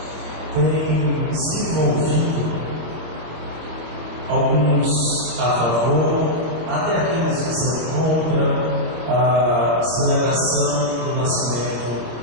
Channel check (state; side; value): late; left; 26 ms